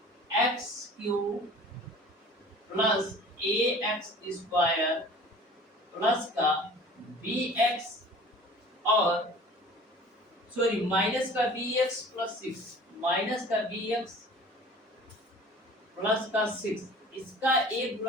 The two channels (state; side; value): normal; both; correlation 0.45